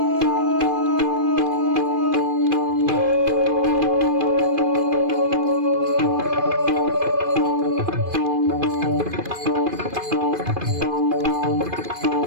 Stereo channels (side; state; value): left; late; 2.5 ms